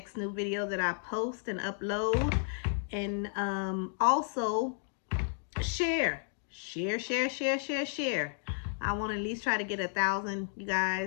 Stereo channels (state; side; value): silent; right; digital silence